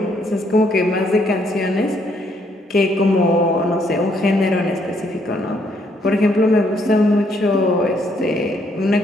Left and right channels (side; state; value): both; normal; correlation 0.71